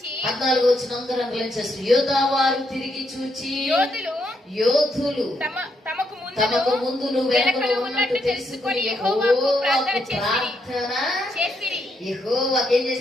14వ వచనం అందరూ అండర్లైన్ చేస్తారు. యోధా వారు తిరిగి చూచి, యోధులు తమకు ముందును వెనుకను ఉన్నట్టు తెలుసుకొని యెహోవాకు ప్రార్థన చేసిరి. యెహోవాకు ఏం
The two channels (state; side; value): normal; both; correlation 0.78